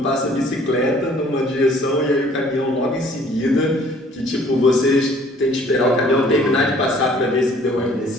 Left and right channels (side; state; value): both; normal; correlation 0.56